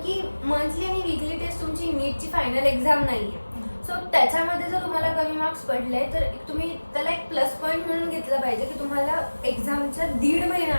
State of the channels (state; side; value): inverted; both; correlation -1.00